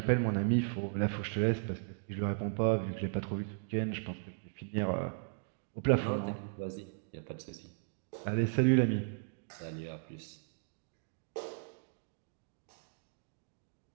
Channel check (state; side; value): silent; left; digital silence